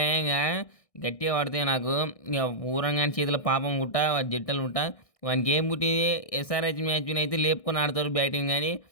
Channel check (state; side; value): late; right; 1.6 ms